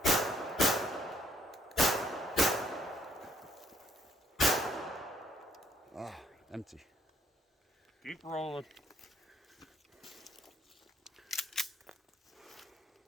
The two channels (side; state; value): both; normal; correlation 0.66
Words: Oh, empty. Keep rolling.